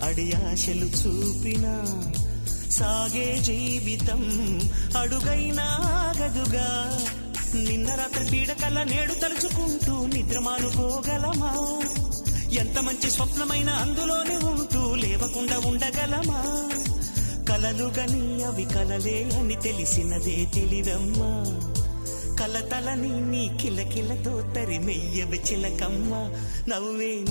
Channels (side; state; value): both; inverted; correlation -1.00